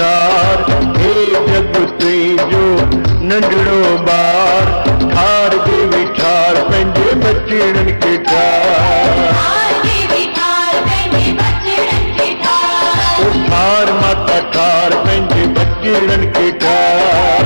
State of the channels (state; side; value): inverted; both; correlation -1.00